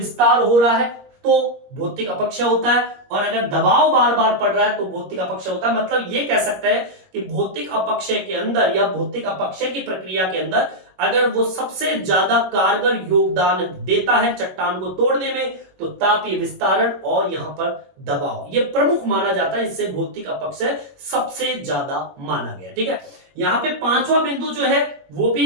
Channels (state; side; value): late; left; 21 ms